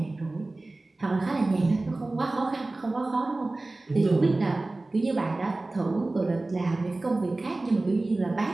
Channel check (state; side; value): quieter; left; 3.0 dB